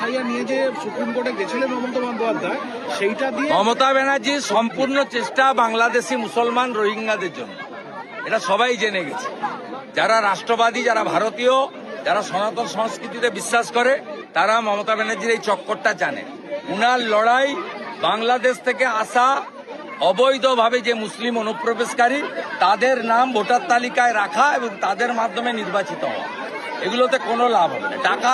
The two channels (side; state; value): both; identical; correlation 1.00